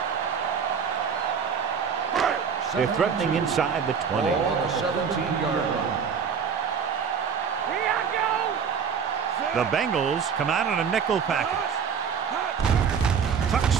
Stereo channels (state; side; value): quieter; left; 6.8 dB